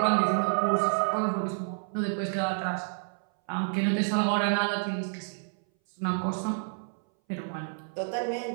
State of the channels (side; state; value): left; silent; 58 dB below the other